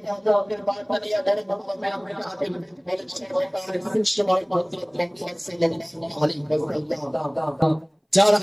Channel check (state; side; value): identical; both; correlation 1.00